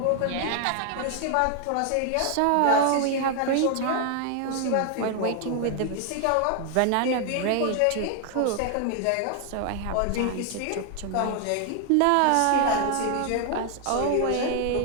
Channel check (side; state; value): both; different; correlation 0.00